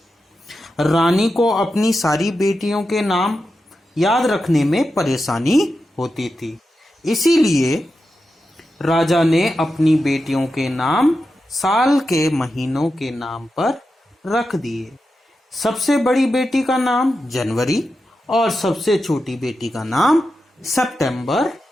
रानी को अपनी सारी बेटियों के नाम याद रखने में परेशानी होती थी, इसीलिए राजा ने अपनी बेटियों के नाम साल के महीनों के नाम पर रख दिए। सबसे बड़ी बेटी का नाम जनवरी और सबसे छोटी बेटी का नाम सितंबर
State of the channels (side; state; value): both; normal; correlation 0.89